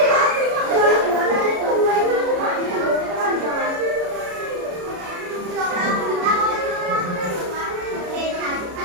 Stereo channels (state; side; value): late; left; 33 ms